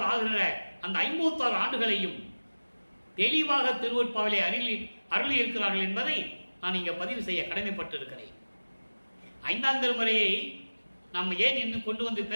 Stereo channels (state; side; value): inverted; both; correlation -1.00